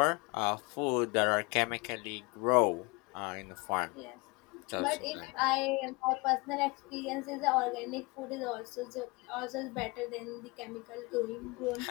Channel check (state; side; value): quieter; right; 27.0 dB